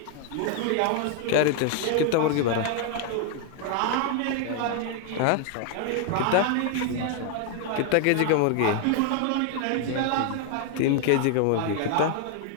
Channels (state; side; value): different; both; correlation 0.00